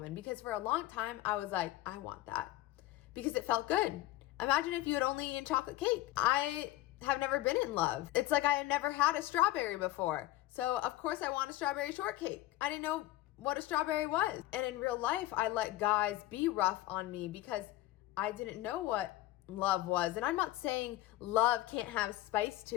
Because for a long time, I was like, I want that. Because it felt good. Imagine if you had only eaten chocolate cake. I have never been in love. It's like I had never had a strawberry before. So of course I want a strawberry shortcake. I didn't know what a strawberry was. And in real life, I let guys be rough on me because I didn't know what love was. And I'm not saying love can't have spice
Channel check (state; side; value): quieter; right; 15.9 dB